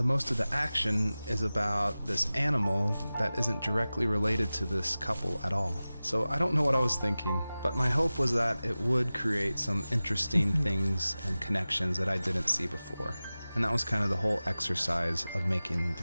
most of the action is about this animal that isn't directly related to this couple at all. So I don't know what I was thinking, but my hope was that it would create some interesting things and connections that I didn't see before. And that was kind of the whole exercise of making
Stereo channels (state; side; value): inverted; both; correlation -0.96